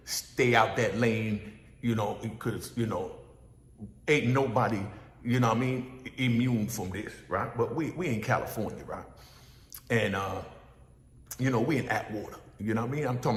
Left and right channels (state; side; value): identical; both; correlation 1.00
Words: stay out that lane, because, ain't nobody, immune from this, right? But we in California, right? And, we in Atwater, I'm talking